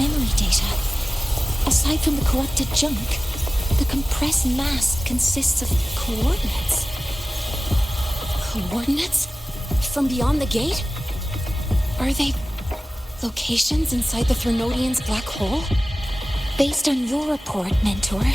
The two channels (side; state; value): both; normal; correlation 0.96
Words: data. Aside from the corrupted junk, the compressed mass consists of coordinates. Coordinates? From beyond the gate? Are they locations inside the Threnodian's black hole? Based on your report, Mentor,